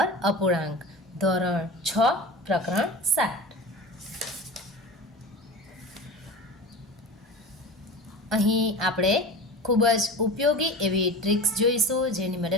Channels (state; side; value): normal; both; correlation 0.32